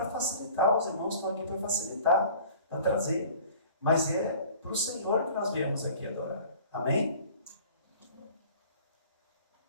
facilitar, os irmãos estão aqui para facilitar, para trazer. Mas é para o Senhor que nós viemos aqui adorar. Amém?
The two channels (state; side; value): inverted; both; correlation -0.46